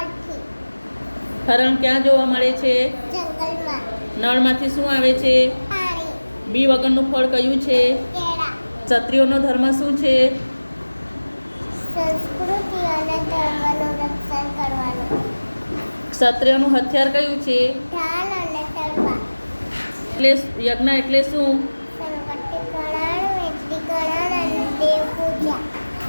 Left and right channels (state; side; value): inverted; both; correlation -1.00